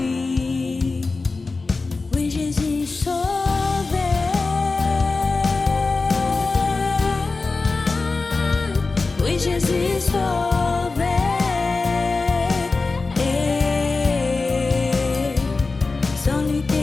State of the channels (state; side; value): quieter; right; 3.9 dB